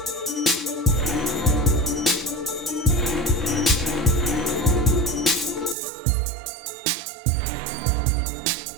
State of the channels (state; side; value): drops out; left; at 5.8 s